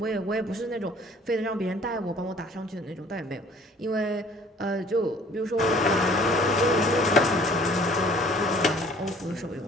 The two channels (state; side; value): normal; both; correlation 0.54